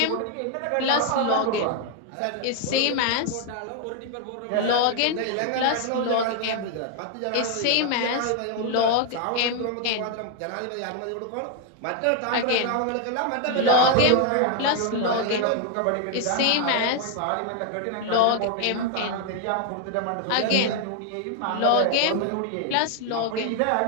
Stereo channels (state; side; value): different; both; correlation 0.00